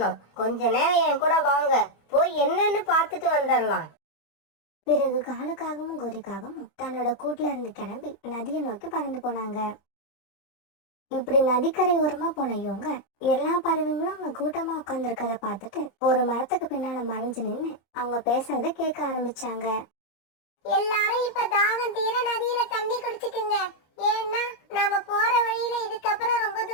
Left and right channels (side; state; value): right; late; 24 ms